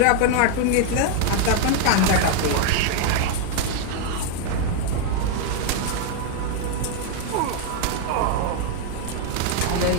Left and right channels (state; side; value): different; both; correlation 0.00